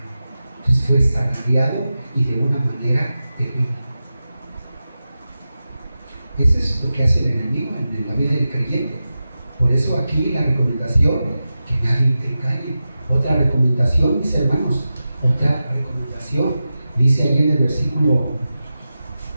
Entonces fue zarandeado y de una manera terrible. Eso es lo que hace el enemigo en la vida del creyente. Por eso aquí la recomendación, que nadie te engañe. Otra recomendación, mis hermanos, otra recomendación, dice ahí en el versículo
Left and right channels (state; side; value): inverted; both; correlation -0.93